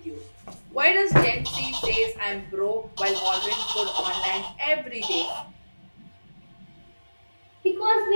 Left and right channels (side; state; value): both; inverted; correlation -1.00